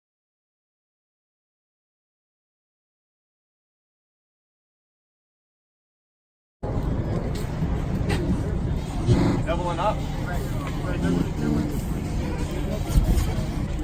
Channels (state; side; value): identical; both; correlation 1.00